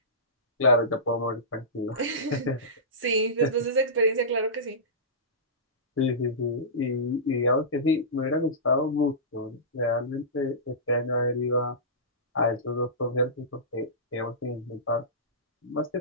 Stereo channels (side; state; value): both; normal; correlation -0.20